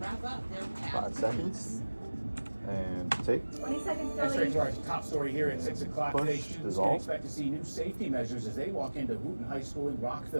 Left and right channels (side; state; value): both; inverted; correlation -1.00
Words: up their 5 seconds. And take. 20 seconds, That's straight Kelly. to our top story here at 6 o'clock Push, today. Students can dissolve. expect to see new safety measures as they walk into Wooten High School in